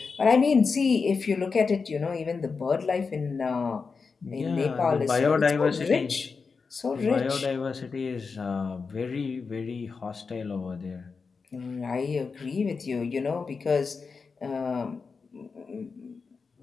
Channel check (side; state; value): right; quieter; 4.9 dB